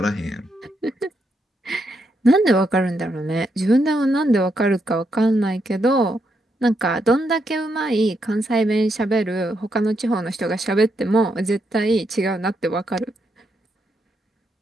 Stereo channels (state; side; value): normal; both; correlation 0.80